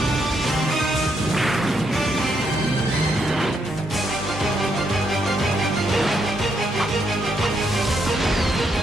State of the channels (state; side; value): normal; both; correlation 0.77